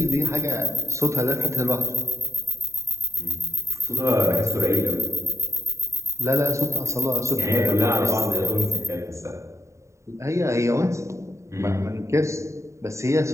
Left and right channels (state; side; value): late; left; 0.14 ms